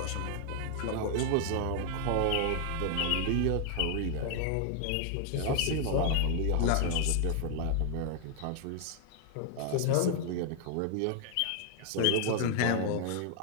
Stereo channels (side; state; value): both; different; correlation 0.00